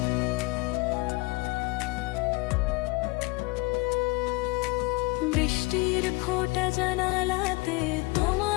বৃষ্টির ফোঁটা জানালাতে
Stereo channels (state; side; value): quieter; right; 24.4 dB